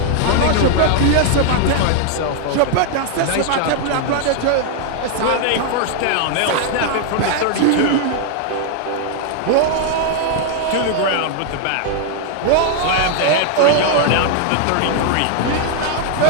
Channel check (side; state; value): both; different; correlation 0.00